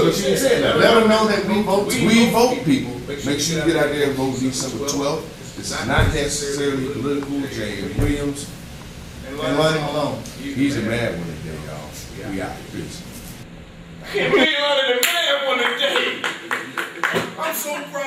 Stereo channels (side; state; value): both; identical; correlation 1.00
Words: but you didn't say that. Let them know that we vote. We vote, people. Make sure you get out there and vote December 12th. This is not necessarily political. James Williams And Lonnie Malone. he's a mad one today, y'all. We out. Peace. I'm so